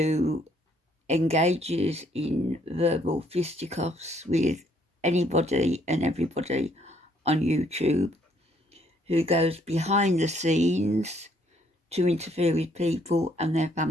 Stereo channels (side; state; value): both; normal; correlation 0.67